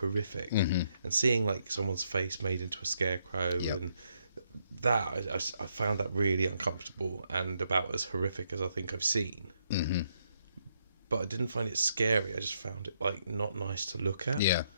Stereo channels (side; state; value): both; inverted; correlation -0.76